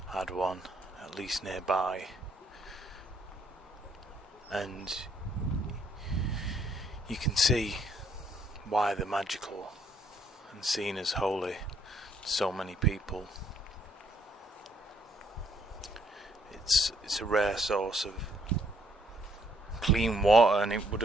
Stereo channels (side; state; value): both; normal; correlation 0.68